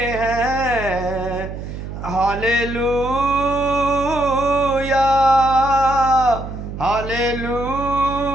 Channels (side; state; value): right; noise; hum, 9 dB below the sound